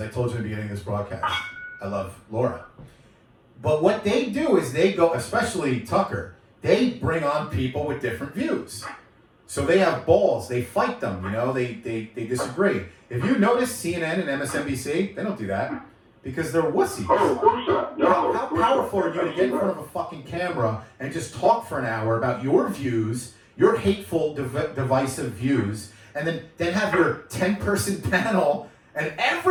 I told you in the beginning of this broadcast, I love Laura. But what they do is they go, especially Tucker, they bring on people with different views. So they have balls, they fight them, they disagree. If you notice CNN and MSNBC, they don't do that because they're wussies. Oh, of course not. No, how powerful are you to get in front of a fucking camera and just talk for an hour about your views, your hateful, divisive views, and then have your 10-person panel and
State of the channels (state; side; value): identical; both; correlation 1.00